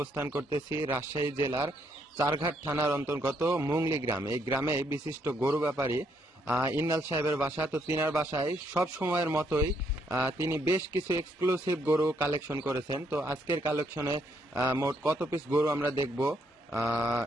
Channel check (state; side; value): normal; both; correlation 0.73